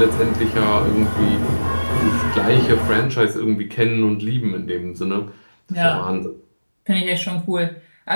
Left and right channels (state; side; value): inverted; both; correlation -1.00